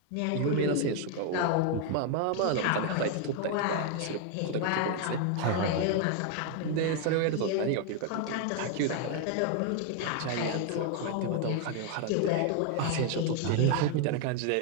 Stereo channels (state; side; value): different; both; correlation 0.00